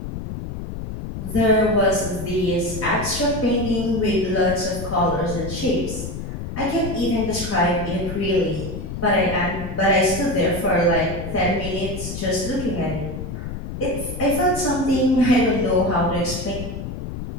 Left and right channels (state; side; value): noise; left; rumble, 7 dB below the sound